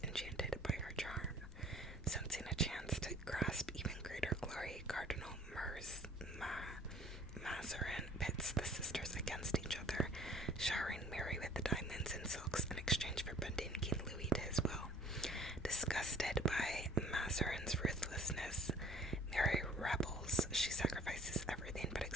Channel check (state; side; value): normal; both; correlation 0.52